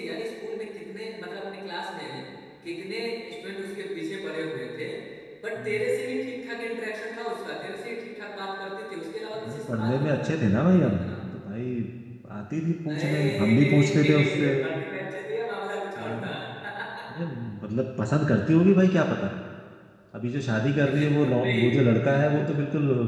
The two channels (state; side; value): identical; both; correlation 1.00